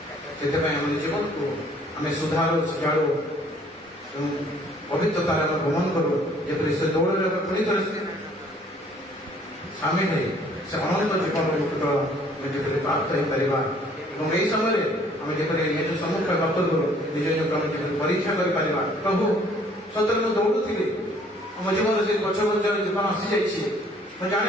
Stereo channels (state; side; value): normal; both; correlation 0.59